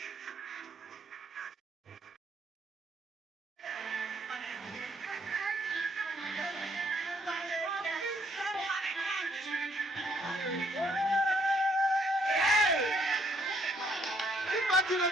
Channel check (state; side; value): normal; both; correlation 0.68